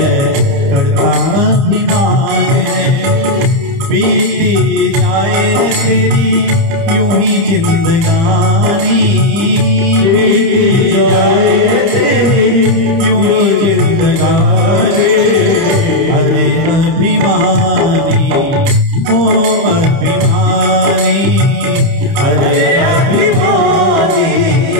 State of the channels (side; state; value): left; late; 30 ms